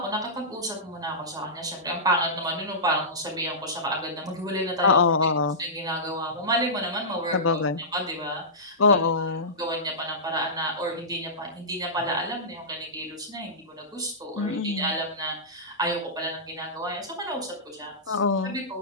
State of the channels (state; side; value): normal; both; correlation -0.17